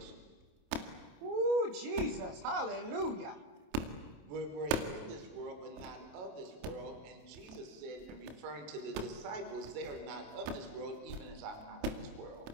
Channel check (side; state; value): left; late; 27 ms